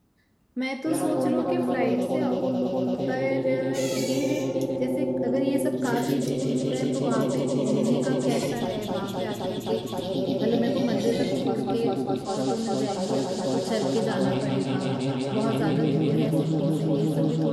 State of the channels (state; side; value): identical; both; correlation 1.00